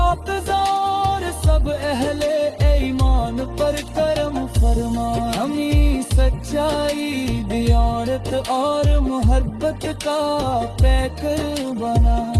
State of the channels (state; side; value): identical; both; correlation 1.00